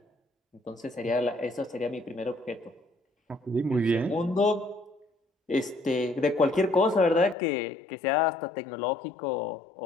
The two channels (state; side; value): drops out; right; at 7.4 s